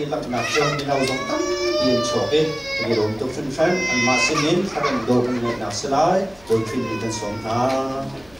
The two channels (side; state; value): left; noise; hum, 27 dB below the sound